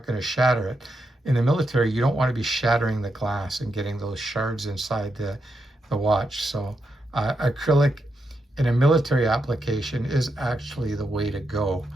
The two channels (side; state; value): both; normal; correlation 0.84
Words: going to shatter it. In the military, you don't want to be shattering the glass and getting those shards inside the watch. So acrylic in a military application is actually the way to go.